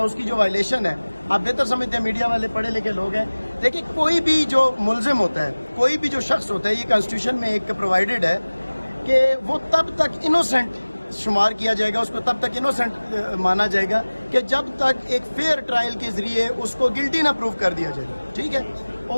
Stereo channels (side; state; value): both; inverted; correlation -1.00